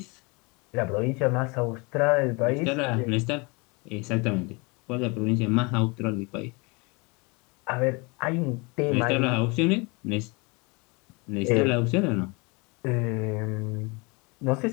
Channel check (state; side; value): quieter; right; 28.6 dB